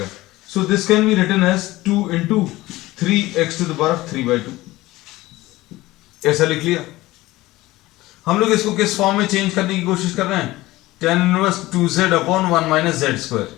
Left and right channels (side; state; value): right; quieter; 18.3 dB